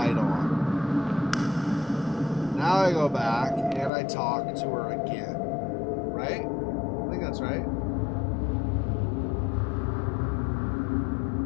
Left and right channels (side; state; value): right; drops out; at 3.9 s